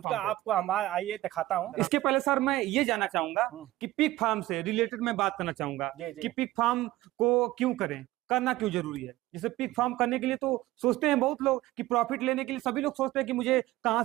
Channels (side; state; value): left; quieter; 16.8 dB